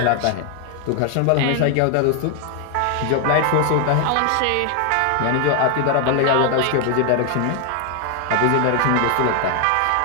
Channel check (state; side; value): different; both; correlation 0.00